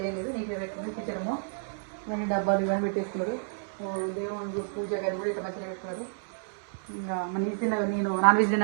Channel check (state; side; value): silent; left; 58 dB below the other